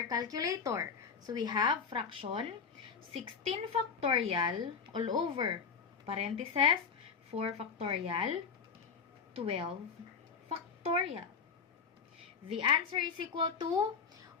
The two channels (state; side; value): quieter; right; 5.9 dB